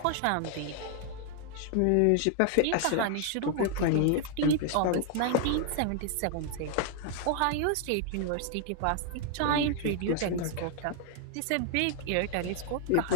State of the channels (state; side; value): different; both; correlation 0.00